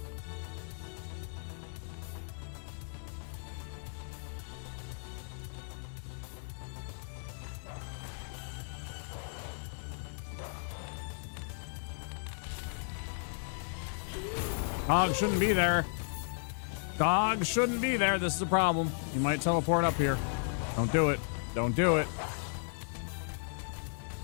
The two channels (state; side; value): silent; right; 55 dB below the other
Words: Dog shouldn't be there. Dog shouldn't be there. This is a problem. You might teleport up here. Don't do it. Don't do it.